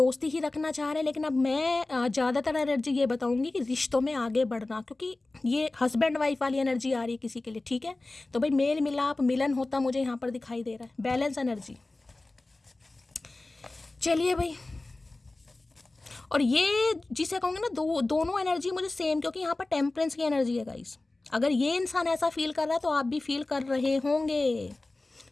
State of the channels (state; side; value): quieter; right; 3.0 dB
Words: ही रखना चाह रहे हैं, लेकिन अब मैं ज़्यादातर एनर्जी ये बताऊंगी कि रिश्तों में आगे बढ़ना, क्योंकि ये हस्बैंड वाइफ वाली एनर्जी आ रही है किसी के लिए, ठीक है। तो भाई मेल मिलाप मिलन होता मुझे यहाँ पर दिखाई दे रहा है, बैलेंस एनर्जी। चलिए भाई, और ये जिसे कहूँगे ना, दोनों एनर्जी मुझे सेम, क्योंकि यहाँ पर टेम्परेंस की एनर्जी है गाइस। अगर ये इंसान ऐसा फील कर रहा है तो आप भी फील कर रहे होंगे।